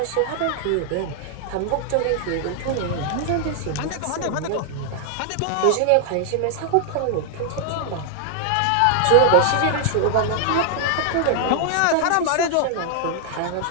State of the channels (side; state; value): both; different; correlation 0.00